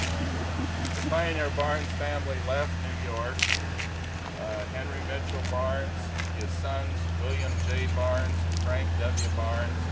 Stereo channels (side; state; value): both; identical; correlation 1.00